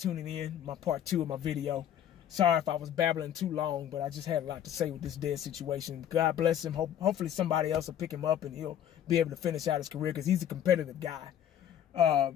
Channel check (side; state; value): right; quieter; 10.2 dB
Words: in. My part 2 of my video. Sorry if I was babbling too long, but I just had a lot to say with this Dez situation. God bless him. Hopefully somebody else will pick him up and he'll be able to finish out his career because he's a competitive guy.